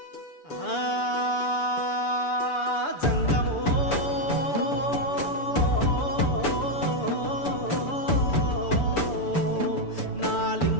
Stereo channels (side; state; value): right; late; 6.9 ms